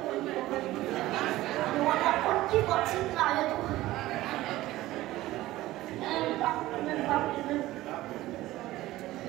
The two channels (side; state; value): left; quieter; 16.6 dB